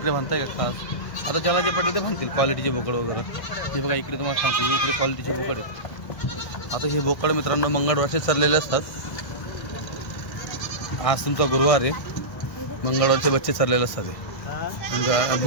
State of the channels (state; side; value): late; right; 1.5 ms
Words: बांधताय का खास. आता ज्याला जे पटेल ते बांधतील क्वालिटीचे बोकड वगैरे. हे बघा इकडे तुम्हाला सांगतो हे इकडे क्वालिटीचे बोकड आहेत. आता हे बोकड मित्रांनो मंगळवारचे चाललेले असतात. आज तुमचा गुरुवार आहे. मंगळवारचे बच्चे चाललेले असतात. हे